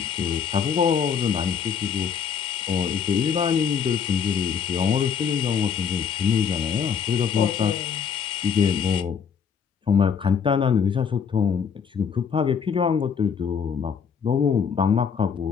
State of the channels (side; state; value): right; quieter; 7.0 dB